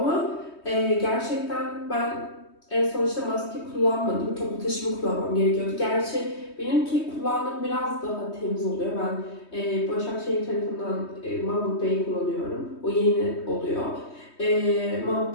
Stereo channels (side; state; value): right; late; 3.2 ms